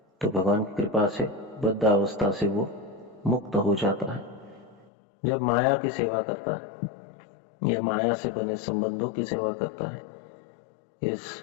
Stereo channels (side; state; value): right; drops out; at 4.9 s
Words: तो भगवान की कृपा से बद्ध अवस्था से वो मुक्त हो जाता है। जब माया की सेवा करता है या माया से बने संबंधों की सेवा करता है, इस